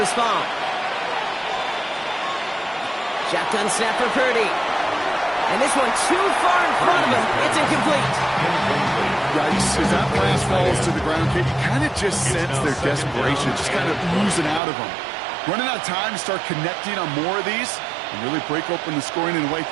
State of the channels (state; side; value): drops out; left; at 14.6 s